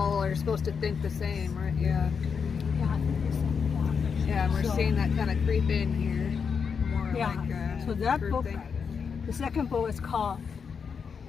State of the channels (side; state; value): right; quieter; 6.1 dB